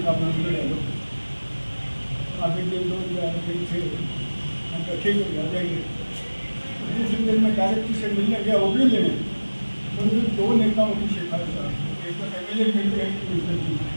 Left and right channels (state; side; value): inverted; both; correlation -1.00